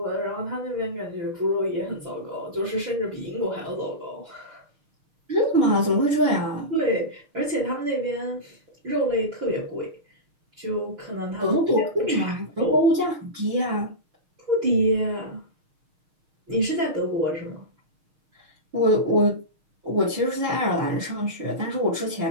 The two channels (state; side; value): late; left; 6.5 ms